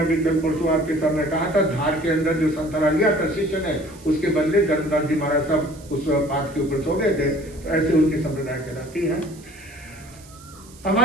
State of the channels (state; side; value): noise; right; hiss, 23 dB below the sound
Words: कल परसों आपके सामने कहा था, धार के अंदर जो संतरा लिया था शिष्य ने, उसके बदले धर्मदास जी महाराज साहब उस पाठ के ऊपर सो गए थे। तो ऐसे उनकी संप्रदाय कहलाती है।